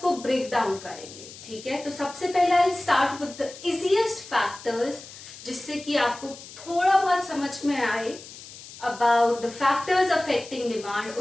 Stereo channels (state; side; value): noise; left; hiss, 16 dB below the sound